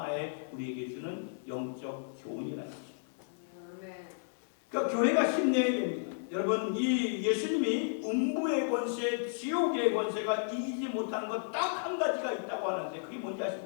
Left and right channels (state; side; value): silent; right; 56 dB below the other